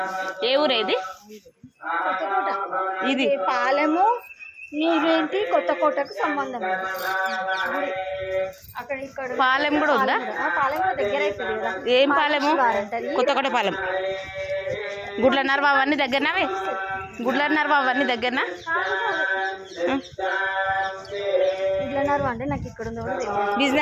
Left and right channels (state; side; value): identical; both; correlation 1.00